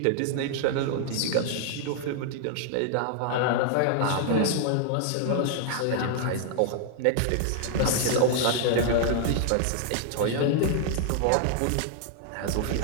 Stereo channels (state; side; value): different; both; correlation 0.00